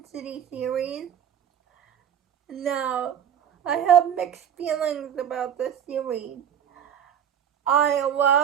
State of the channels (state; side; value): quieter; left; 8.9 dB